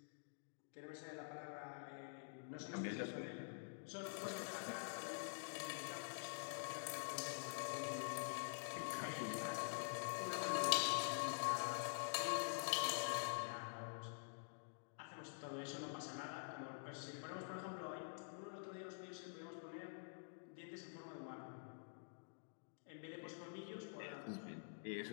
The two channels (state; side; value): silent; right; digital silence